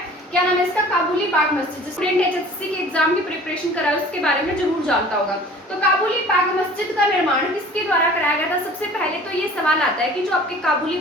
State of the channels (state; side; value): normal; both; correlation 0.46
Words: क्या नाम है इसका, काबुली बाग मस्जिद। स्टूडेंट एचएससी के एग्जाम की प्रिपरेशन करा है उसके बारे में जरूर जानता होगा। तो काबुली बाग मस्जिद का निर्माण किसके द्वारा कराया गया था। सबसे पहले तो ये सवाल आता है कि जो आपके काबुली